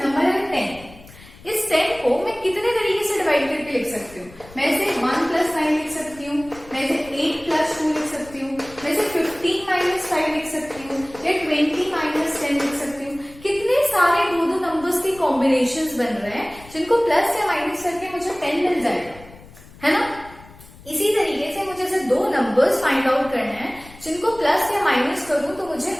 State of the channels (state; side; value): noise; left; rumble, 21 dB below the sound